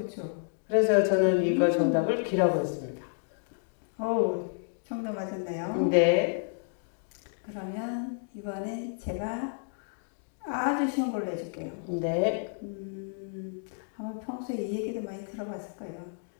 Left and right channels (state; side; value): silent; right; digital silence